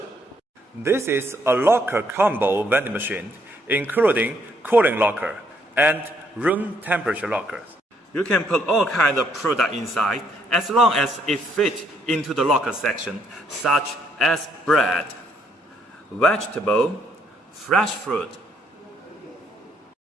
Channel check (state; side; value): normal; both; correlation 0.70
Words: This is a locker combo vending machine, including cooling locker and room temperature lockers. You can put all kinds of product inside as long as it fits into the locker section, such as bread, vegetable, fresh fruit.